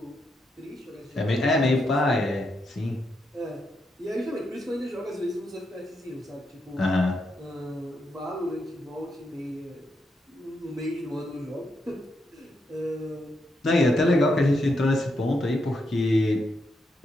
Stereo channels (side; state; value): both; normal; correlation 0.82